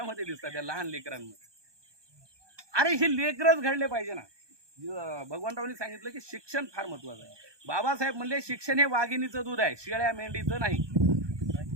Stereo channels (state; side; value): late; left; 1.2 ms